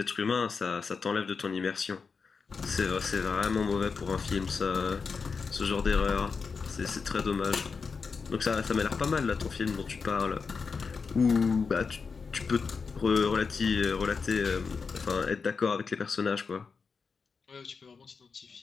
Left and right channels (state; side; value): quieter; right; 5.2 dB